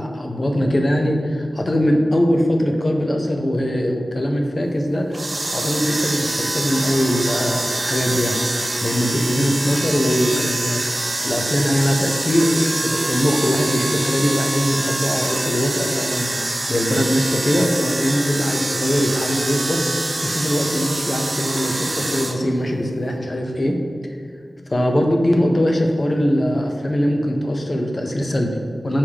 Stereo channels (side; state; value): both; normal; correlation 0.96